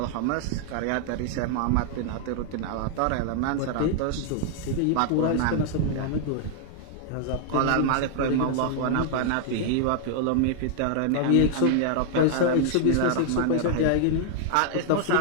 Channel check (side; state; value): both; different; correlation 0.00